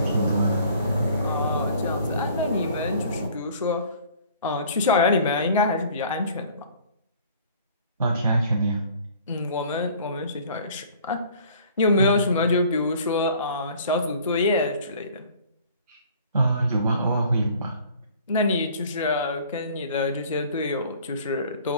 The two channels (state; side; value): inverted; both; correlation -0.51